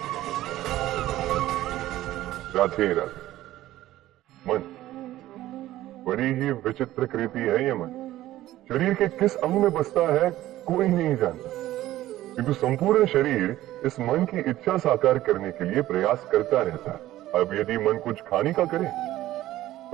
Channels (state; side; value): quieter; left; 14.9 dB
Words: राधे राधे। मन बड़ी ही विचित्र कृति है ये मन। शरीर के किस अंग में बसता है कोई नहीं जानता, किंतु संपूर्ण शरीर इस मन की इच्छा साकार करने के लिए प्रयास करता रहता है। अब यदि मन कुछ खाने का करे